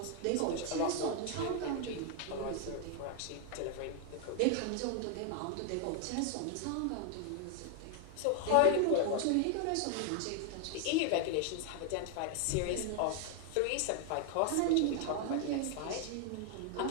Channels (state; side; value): different; both; correlation 0.00